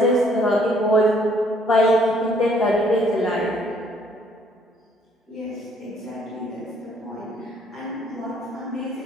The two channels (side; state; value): both; normal; correlation 0.63